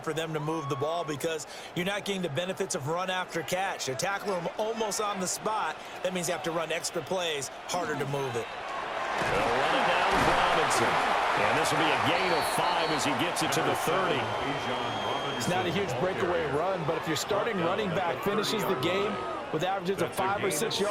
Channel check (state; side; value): identical; both; correlation 1.00